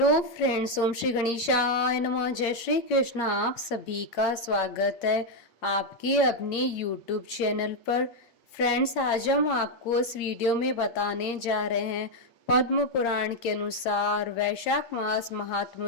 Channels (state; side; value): late; right; 8.8 ms